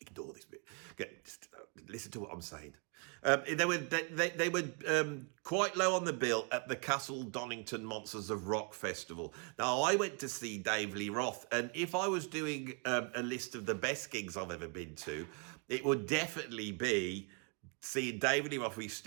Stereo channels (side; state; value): left; quieter; 36.2 dB